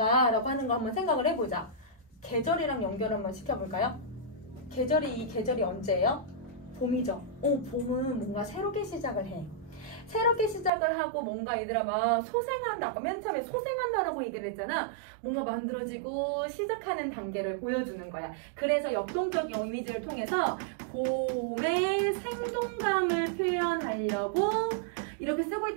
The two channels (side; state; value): left; drops out; at 10.7 s